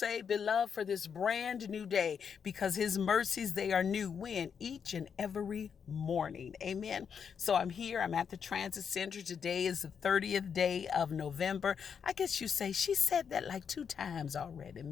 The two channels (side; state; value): right; quieter; 6.9 dB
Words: beloved, for this brand new day, because his mercies, they are new when each and every morning. Amen. So I'm here. I'm at the transit center. Today is the 30th day of November. I guess you say she said that like 2 times already,